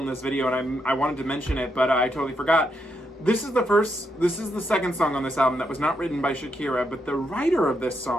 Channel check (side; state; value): both; normal; correlation 0.80